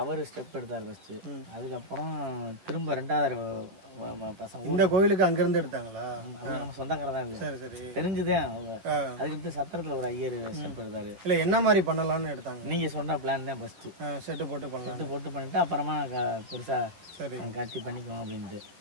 ஸ்டெப் எடுத்தார் ஃபர்ஸ்ட். அதுக்கப்புறம் திரும்ப 2வது பசங்க இந்த கோயிலுக்கு அங்கிருந்து எடுத்தாங்களா? நம்ம சொந்தக்காரர் தான். சரி சரி தெரிஞ்சுதான். அதுக்கு சத்திரத்துல ஒரு ஐயர் ஸ்டெப் எடுத்தாரு. இல்ல என்ன மாதிரி பண்ணலாம்னு எடுத்தாங்க? நீங்க சொன்ன பிளான் தான் ஃபர்ஸ்ட். செட்டு போட்டு பண்ணலாம். செட்டு போட்டு பண்ணிட்டு அப்புறமா பெருசா காட்சி பண்ணிக்குவோம் அப்படின்ட்டு.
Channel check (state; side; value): late; left; 11 ms